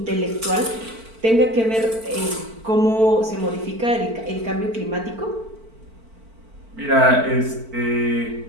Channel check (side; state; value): left; late; 4.5 ms